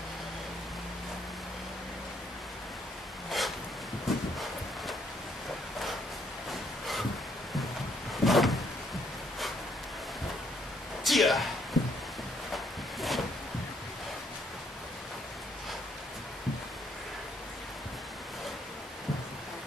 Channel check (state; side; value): normal; both; correlation 0.70